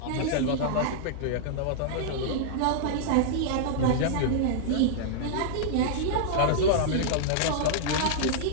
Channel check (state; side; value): different; both; correlation -0.02